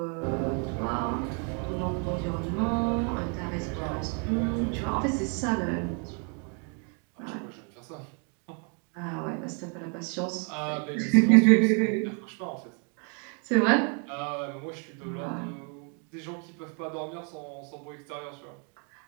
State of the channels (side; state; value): left; quieter; 38.8 dB